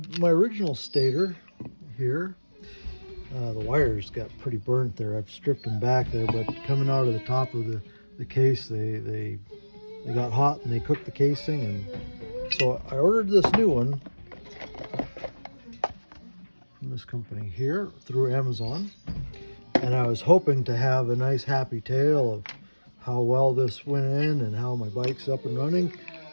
original stator here, the wires got pretty burnt there. I've stripped them back there, but coming out of the top of the case, they got hot and they cooked the casing, and so I ordered this new one from this company here through Amazon, and I was hoping to have a nice happy tale of how well this went in and how my bike's up and running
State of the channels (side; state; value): both; inverted; correlation -1.00